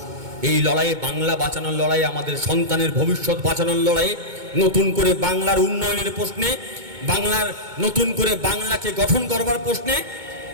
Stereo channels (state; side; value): late; left; 2.2 ms